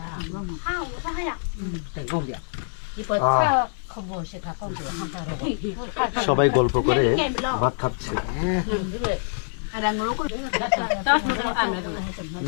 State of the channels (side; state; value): right; silent; digital silence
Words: সবাই গল্প করে ভাত খাচ্ছে।